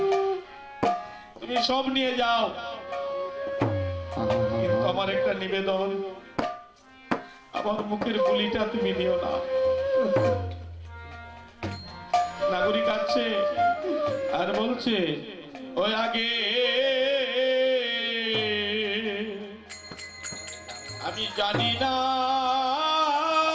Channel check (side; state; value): both; identical; correlation 1.00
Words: তুমি সব নিয়ে যাও, কিন্তু আমার একটা নিবেদন, আমার মুখের গুলিটা তুমি নিও না। নাগরিক আছে আর বলছে ওই আগে আমি জানি না